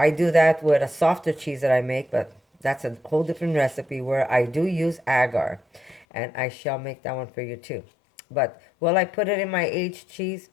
do that with a softer cheese that I make, but that's a whole different recipe where I do use agar. And I shall make that one for you too. But will I put it in my aged cheese?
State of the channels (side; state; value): right; drops out; at 6.1 s